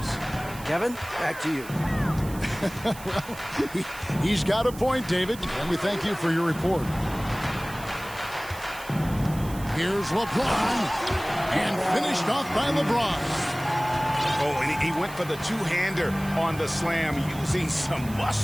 Kevin, back to you. Well, he's got a point, David, and we thank you for your report. Here's LeBron, and finished off by LeBron. Oh, and he went for the two-hander on the slam, using some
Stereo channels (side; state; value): right; noise; hiss, 17 dB below the sound